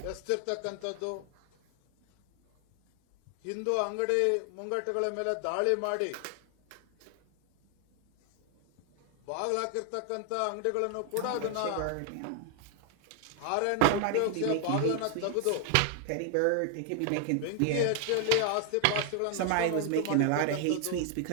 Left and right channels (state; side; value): different; both; correlation 0.00